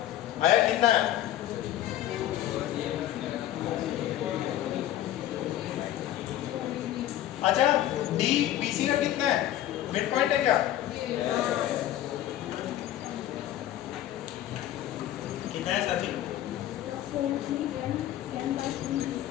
आया कितना है? अच्छा, डी बीसी का कितना है? मिड पॉइंट है क्या? कितना है साथी?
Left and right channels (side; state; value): right; quieter; 12.9 dB